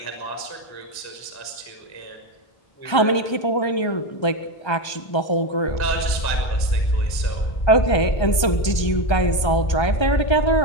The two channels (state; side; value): late; right; 1.3 ms